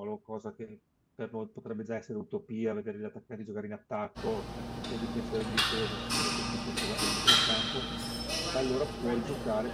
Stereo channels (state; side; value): identical; both; correlation 1.00